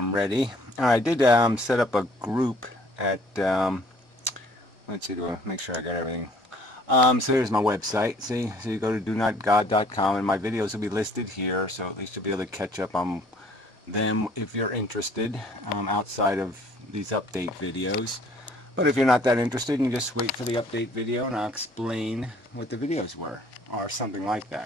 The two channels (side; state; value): both; normal; correlation 0.57